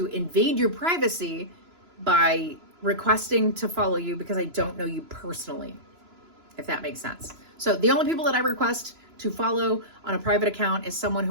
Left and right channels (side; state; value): left; late; 3.0 ms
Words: invade your privacy by requesting to follow you because I don't know you personally, if that makes sense. So the only people that I request to follow on a private account is someone